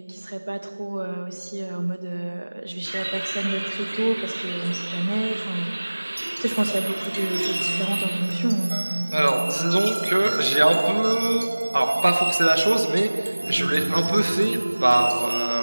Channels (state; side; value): inverted; both; correlation -1.00